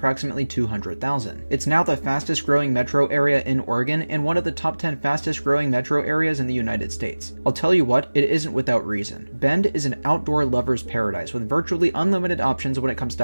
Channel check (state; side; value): inverted; both; correlation -1.00